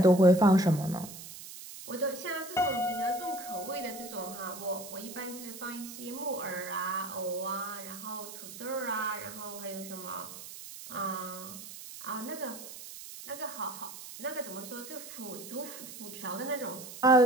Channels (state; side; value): noise; right; hiss, 13 dB below the sound